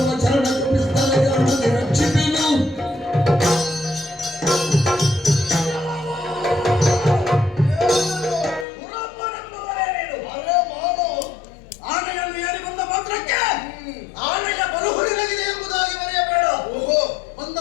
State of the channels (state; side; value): drops out; right; at 8.7 s